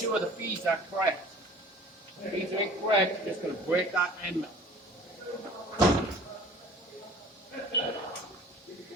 the feeds are correct. If the feeds are incorrect, you're just going to break that end mill.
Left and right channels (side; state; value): both; normal; correlation 0.46